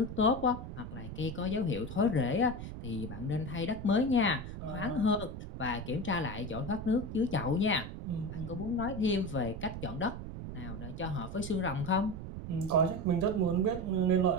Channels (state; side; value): noise; right; rumble, 8 dB below the sound